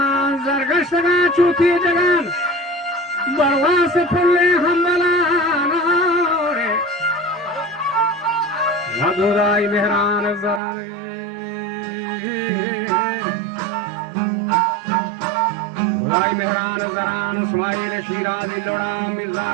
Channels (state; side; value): drops out; left; at 10.6 s